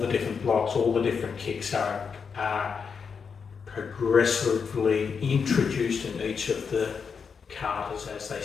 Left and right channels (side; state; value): right; quieter; 6.0 dB